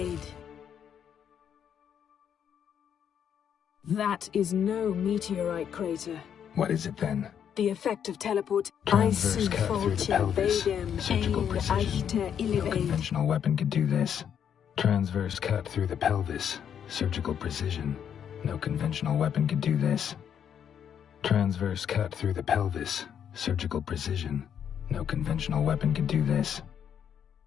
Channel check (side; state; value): right; quieter; 8.6 dB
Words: That is no meteorite crater. What is it then? The effect of teleport. Transverse cut through the pelvis. Surgical precision. No conventional weapon could do this. Transverse cut through the pelvis. Surgical precision. No conventional weapon could do this. Transverse cut through the pelvis. Surgical precision. No conventional weapon could do this.